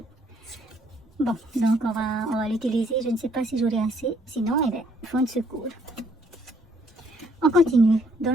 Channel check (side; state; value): both; normal; correlation 0.66